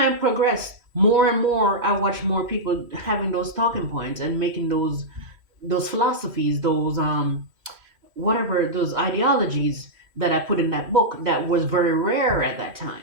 progressed, more and more I watched more people having those talking points and making those philosophies, those whatever those ideologies that I put in that book that was very rare at that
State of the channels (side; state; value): left; late; 3.1 ms